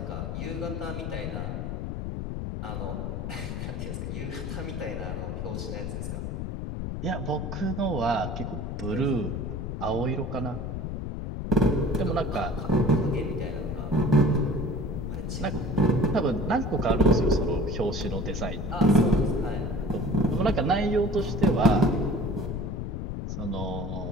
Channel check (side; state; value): left; noise; rumble, 4 dB below the sound